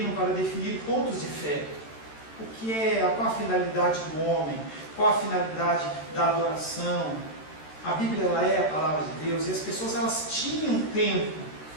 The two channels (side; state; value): right; late; 13 ms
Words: para definir pontos de fé. O que é, qual a finalidade do homem, qual a finalidade da adoração. A Bíblia ela é a palavra de Deus e as pessoas elas tinham tempo.